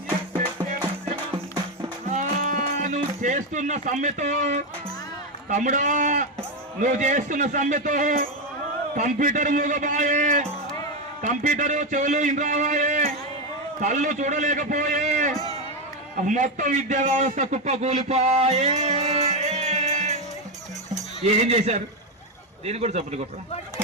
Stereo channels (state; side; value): normal; both; correlation 0.09